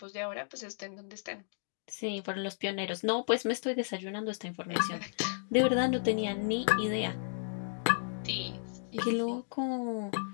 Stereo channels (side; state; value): right; silent; digital silence